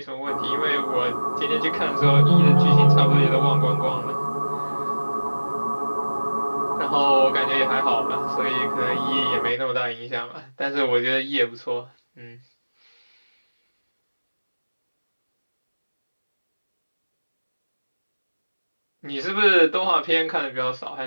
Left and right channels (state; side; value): inverted; both; correlation -1.00